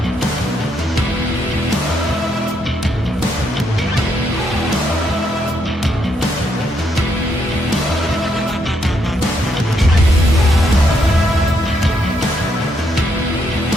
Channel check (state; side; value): normal; both; correlation 0.76